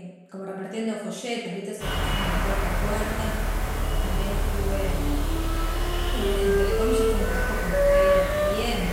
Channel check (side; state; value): both; identical; correlation 1.00